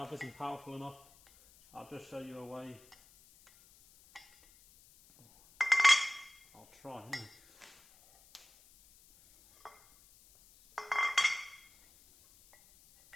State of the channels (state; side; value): noise; left; hiss, 27 dB below the sound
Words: isn't powerful enough, I'll just show you a way. I'll try.